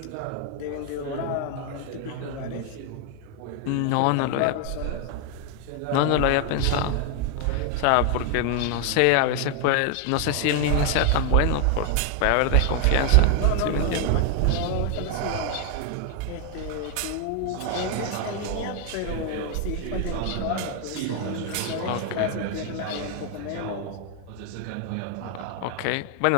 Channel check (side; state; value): both; different; correlation 0.00